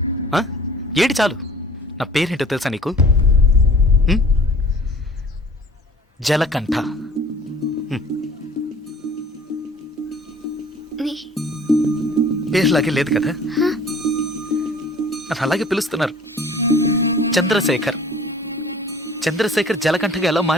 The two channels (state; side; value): normal; both; correlation 0.49